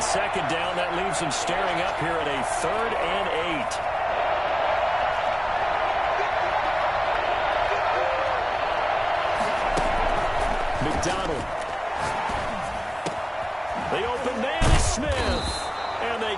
down, that leaves him staring up here at a 3rd and 8. McDonald. The open man is Smith. And they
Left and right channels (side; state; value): both; identical; correlation 1.00